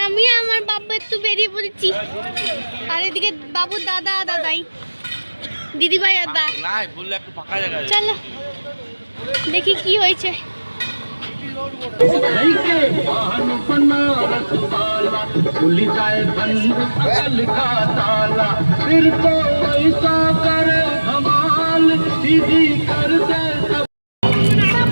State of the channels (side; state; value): both; inverted; correlation -1.00